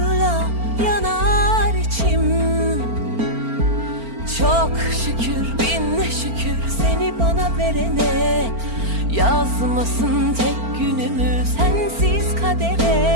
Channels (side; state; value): left; late; 4.4 ms